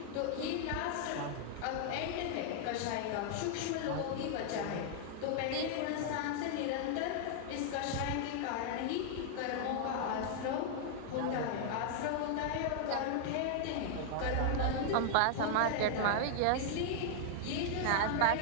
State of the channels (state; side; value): different; both; correlation 0.00